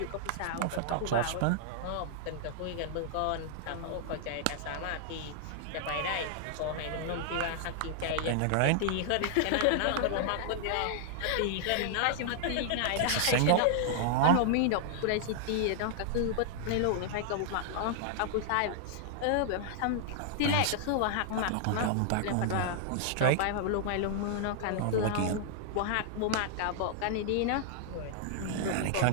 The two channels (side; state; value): both; different; correlation -0.01